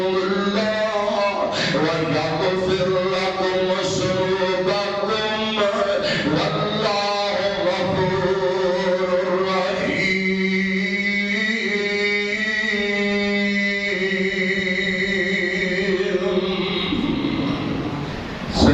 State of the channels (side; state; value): both; identical; correlation 1.00